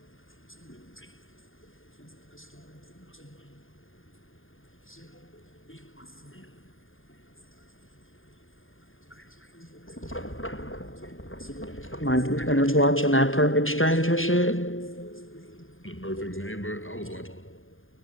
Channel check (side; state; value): right; late; 0.59 ms